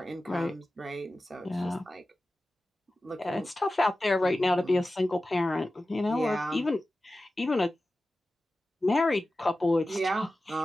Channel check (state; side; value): normal; both; correlation 0.95